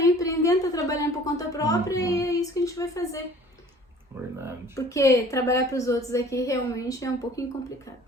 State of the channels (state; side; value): normal; both; correlation 0.49